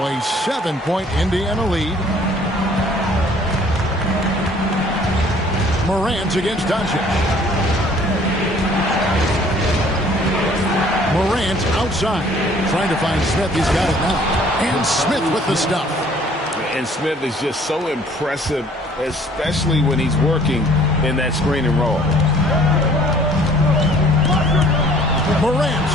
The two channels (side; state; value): both; normal; correlation 0.56